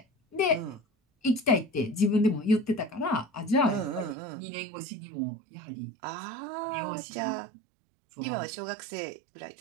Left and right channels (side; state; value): left; drops out; at 4.2 s